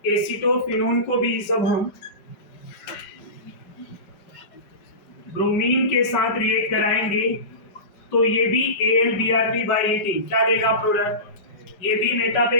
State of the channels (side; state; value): right; late; 5.0 ms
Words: एसीटोफिनोन को भी जब हम ब्रोमीन के साथ रिएक्ट कराएंगे तो ये भी AlBr3 बाय हीटिंग क्या देगा प्रोडक्ट, ये भी मेटा पे